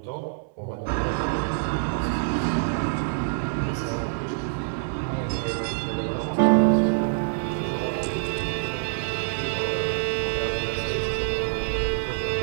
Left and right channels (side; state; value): left; silent; 61 dB below the other